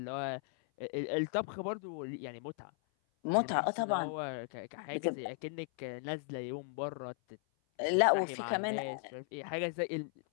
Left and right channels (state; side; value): silent; right; 53 dB below the other